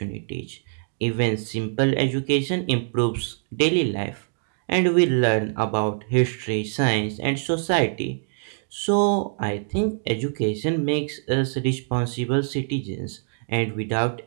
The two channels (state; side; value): silent; left; digital silence